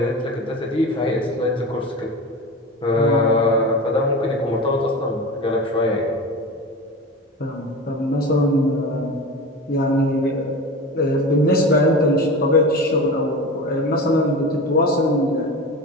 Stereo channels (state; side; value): normal; both; correlation 0.29